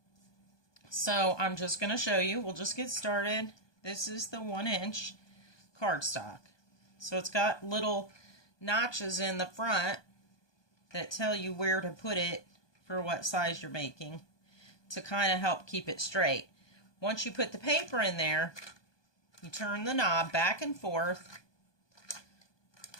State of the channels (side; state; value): right; late; 1.2 ms